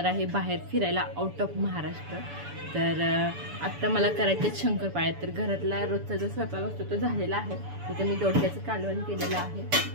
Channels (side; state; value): left; late; 7.0 ms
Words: आहे बाहेर फिरायला, आउट ऑफ महाराष्ट्र. तर आत्ता मला करायचे शंकरपाळ्या. तर घरातला रोजचा जो स्वयंपाक असतो तो झालेला आहे. इथे मी दोडक्याचं कालवण केलेलं आहे.